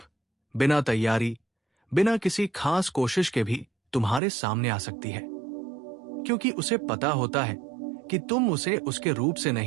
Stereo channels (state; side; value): drops out; left; at 4.2 s